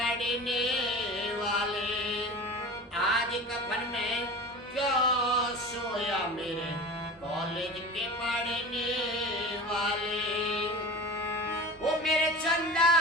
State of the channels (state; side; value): normal; both; correlation 0.33